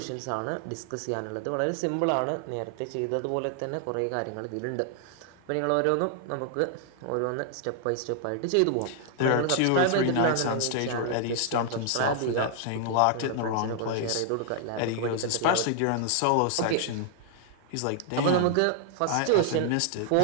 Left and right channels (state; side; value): different; both; correlation 0.00